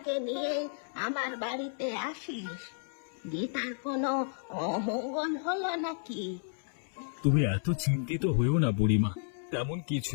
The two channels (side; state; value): right; silent; 56 dB below the other